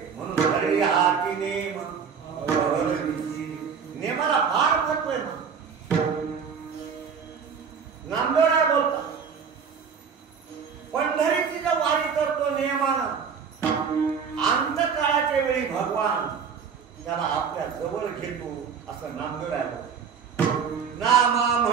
म्हणून घरी हाती नेम, नेमाला फार महत्व आहे ना. नामदेवराय बोलतात पंढरीची जर वारी करतो नियमानं, अंतकाळाच्या वेळी भगवान त्याला आपल्या जवळ घेतो असं नामदेवराय बोलतात. नामा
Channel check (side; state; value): left; quieter; 6.5 dB